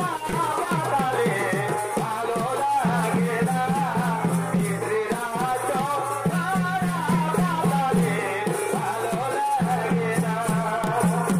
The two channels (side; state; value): both; identical; correlation 1.00